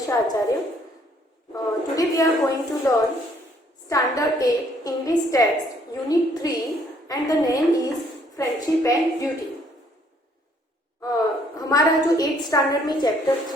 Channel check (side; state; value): both; normal; correlation 0.65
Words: Acharya. Today we are going to learn Standard 8 English Text Unit 3 and the name is Friendship and Duty. हमारा जो 8th standard में chapter